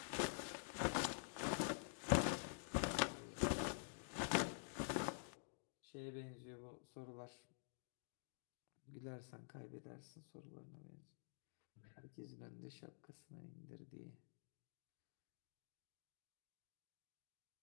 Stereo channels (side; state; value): right; silent; digital silence